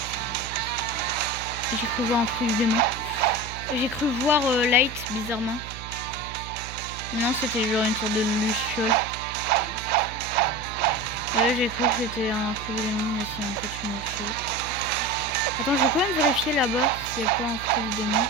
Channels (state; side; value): noise; right; hum, 12 dB below the sound